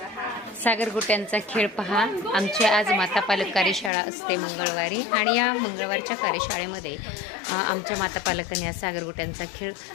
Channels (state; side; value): drops out; right; at 3.9 s